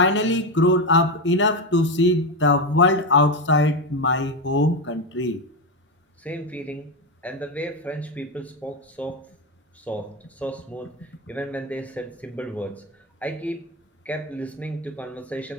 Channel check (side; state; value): both; normal; correlation 0.12